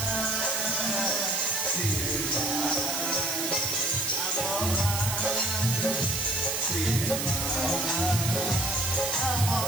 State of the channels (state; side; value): noise; right; hiss, 2 dB below the sound